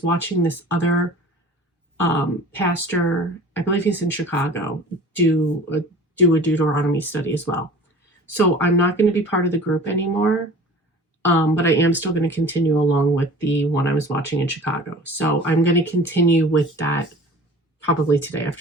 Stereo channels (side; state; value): both; normal; correlation 0.43